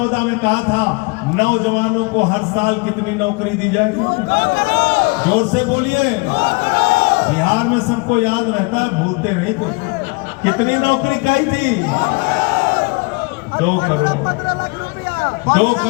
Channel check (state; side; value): quieter; right; 28.6 dB